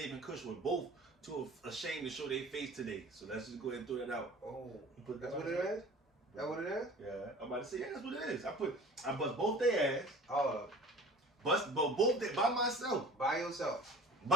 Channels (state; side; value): normal; both; correlation 0.45